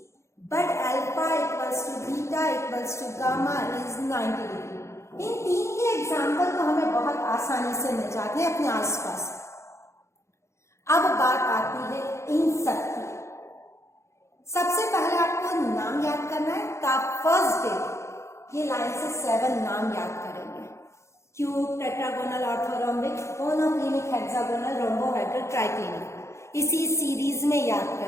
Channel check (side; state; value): right; late; 0.14 ms